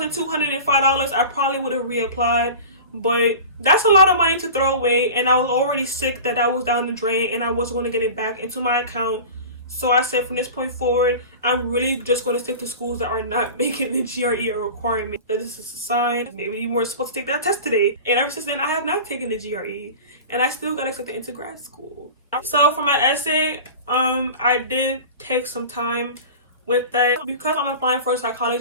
$205, I probably would have reapplied, but that's a lot of money to throw away, and I was already sick that was down the drain, and I wasn't going to get it back into my account. So I said, from this point forward, I'm really just going to stick to schools that are not making the GRE a requirement. That this is a sign. Maybe you were supposed to take that test today. And ever since then, I have not taken the GRE. And I still got accepted into grad school. So for my essay, I did take some time with that. Because I'm applying for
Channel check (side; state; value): both; inverted; correlation -0.35